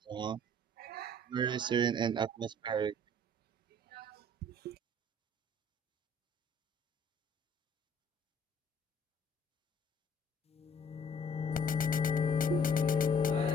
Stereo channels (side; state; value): both; normal; correlation 0.57